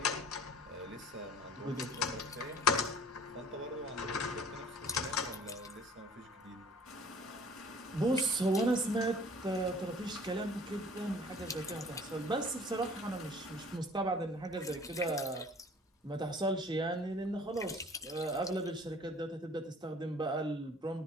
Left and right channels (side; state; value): both; normal; correlation 0.51